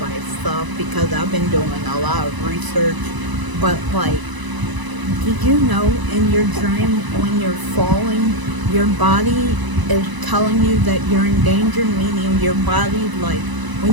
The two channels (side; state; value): left; late; 1.0 ms